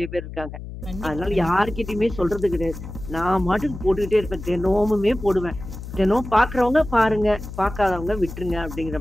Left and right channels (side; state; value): left; noise; hum, 11 dB below the sound